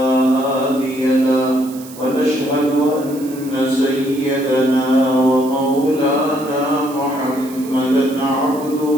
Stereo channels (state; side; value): noise; right; hiss, 18 dB below the sound